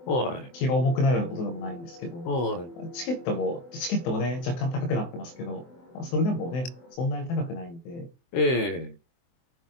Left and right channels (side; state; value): right; late; 23 ms